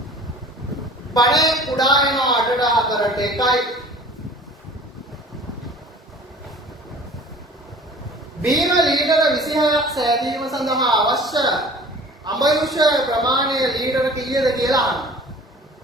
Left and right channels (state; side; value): normal; both; correlation 0.46